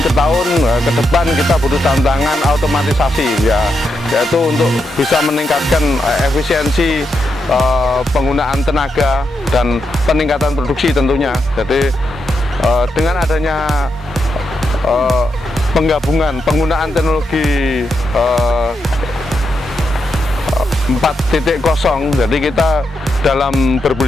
ke tahun ke depan kita butuh tantangan otomatisasi, yaitu untuk bisa meningkatkan efisiensi penggunaan tenaga dan peningkatan produksi tentunya. Jadi dengan adanya penggunaan teknologi 4.0, jadi kita dalam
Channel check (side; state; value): both; normal; correlation 0.84